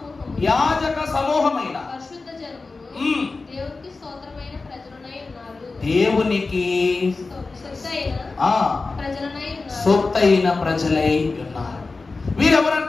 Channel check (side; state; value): right; quieter; 3.8 dB